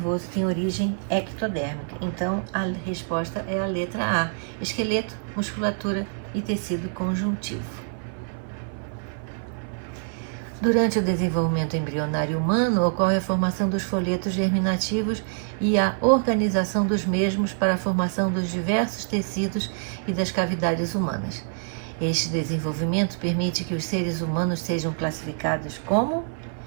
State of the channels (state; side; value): silent; left; 58 dB below the other